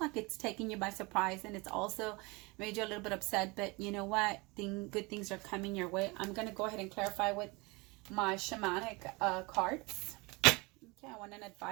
it's taking you by surprise, and it's also made you a little bit upset, but you know what? Good things are coming your way. I'm going to go ahead and clarify with my shamanic cards. Okay, I want an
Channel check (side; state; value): left; quieter; 26.0 dB